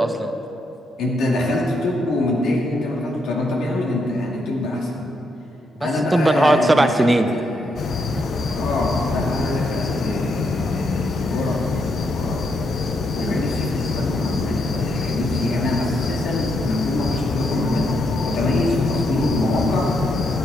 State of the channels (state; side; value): normal; both; correlation 0.78